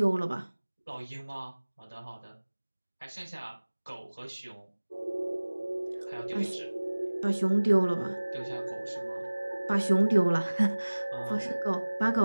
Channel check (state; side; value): inverted; both; correlation -1.00